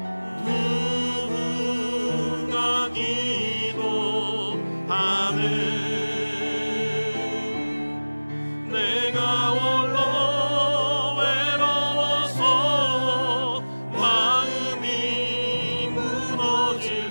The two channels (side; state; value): both; inverted; correlation -1.00